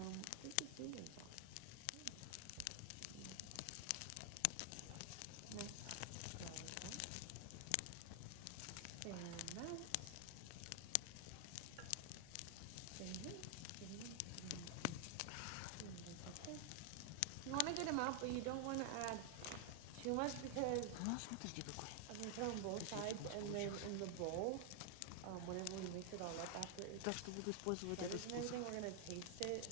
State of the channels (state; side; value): different; both; correlation 0.00